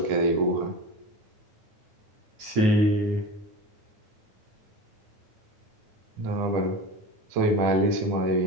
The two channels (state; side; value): late; left; 9.4 ms